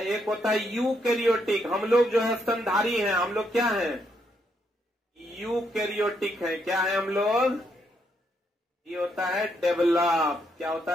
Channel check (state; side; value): normal; both; correlation 0.76